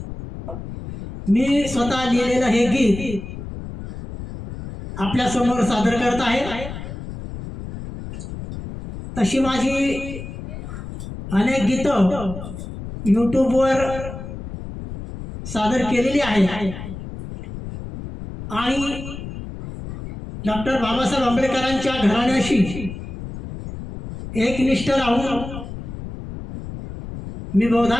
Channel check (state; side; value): noise; left; rumble, 10 dB below the sound